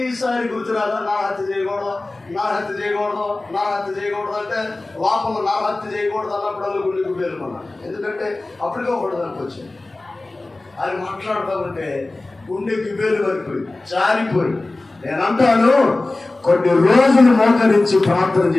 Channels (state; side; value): quieter; right; 3.0 dB